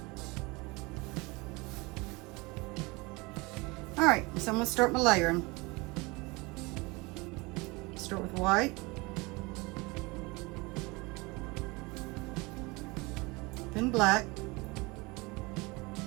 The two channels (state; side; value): quieter; left; 25.1 dB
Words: All right, so I'm gonna start my layering. Start with white. Then black.